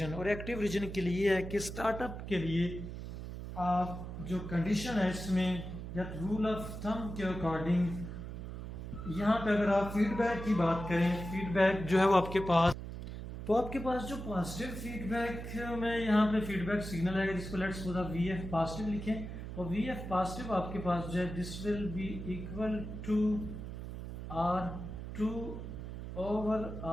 और एक्टिव रीजन के लिए है कि स्टार्टअप के लिए आप जो कंडीशन है इसमें या रूल ऑफ थंब के अकॉर्डिंग यहाँ पे अगर आप फीडबैक की बात करें, फीडबैक जो है वो आपके पास जो पॉजिटिव फीडबैक में यहाँ पे फीडबैक सिग्नल है जिसको let's suppose V F positive लिखें और वी एफ पॉजिटिव आपके पास जो है this will be equal to R2 over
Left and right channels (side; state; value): right; noise; hum, 8 dB below the sound